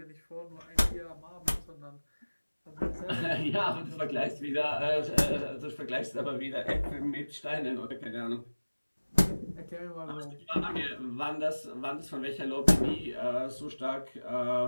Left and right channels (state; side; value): inverted; both; correlation -1.00